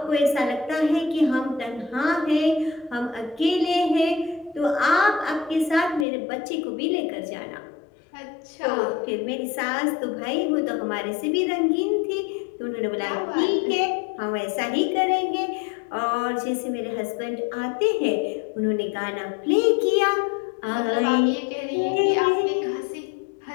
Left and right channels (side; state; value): right; drops out; at 6.1 s